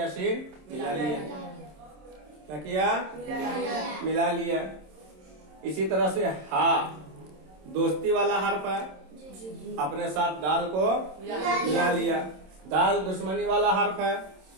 शीन मिला लिया। क्या किया, मिला लिया। इसी तरह से हा दोस्ती वाला हर्फ है, अपने साथ दाल को मिला लिया। दाल दुश्मनी वाला हर्फ है,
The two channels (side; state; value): left; late; 27 ms